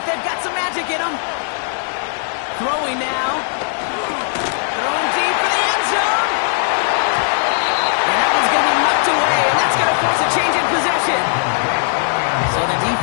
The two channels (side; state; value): right; silent; digital silence